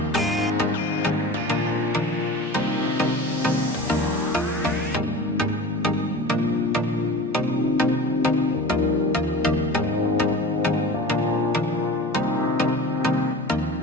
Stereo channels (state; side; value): normal; both; correlation 0.36